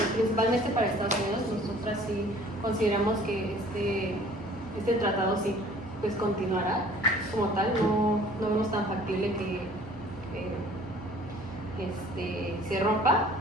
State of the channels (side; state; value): both; normal; correlation 0.52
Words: principalmente para Estados Unidos. Nosotras sí consideramos que este tratado sí pues continuará como tal, no vemos tan factible que se rompa,